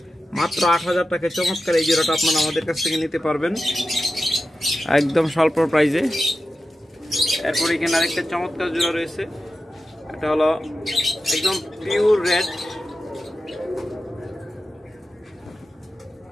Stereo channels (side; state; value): both; normal; correlation 0.92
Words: মাত্র ৮,০০০ টাকায় চমৎকার এই জোড়াটা আপনারা আমাদের কাছ থেকে নিতে পারবেন একদম স্বল্প প্রাইজে। এরপর এখানে আরেকটা চমৎকার জোড়া রয়েছে, এটা হলো একদম পিওর রেড,